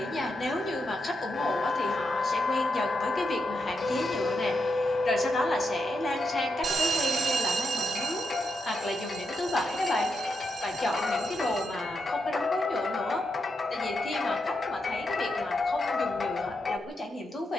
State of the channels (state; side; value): normal; both; correlation 0.84